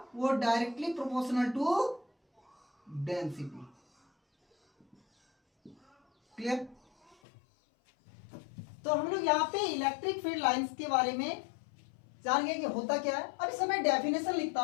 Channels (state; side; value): drops out; right; at 7.2 s